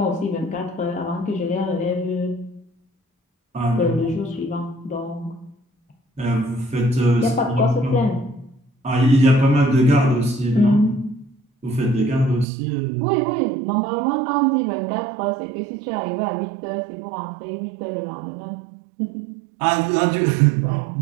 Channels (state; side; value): drops out; left; at 12.5 s